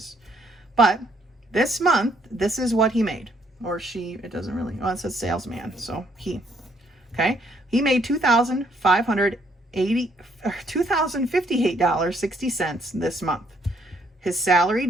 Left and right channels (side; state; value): both; normal; correlation 0.68